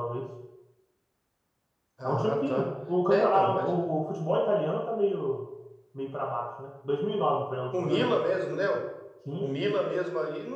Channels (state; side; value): identical; both; correlation 1.00